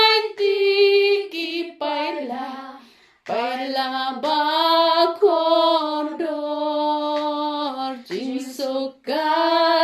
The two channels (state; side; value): identical; both; correlation 1.00